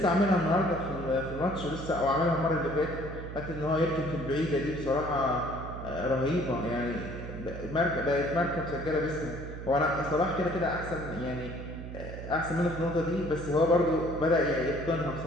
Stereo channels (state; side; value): noise; right; hum, 9 dB below the sound